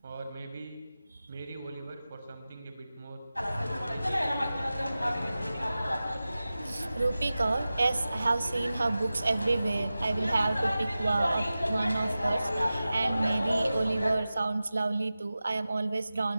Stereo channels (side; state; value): both; inverted; correlation -0.95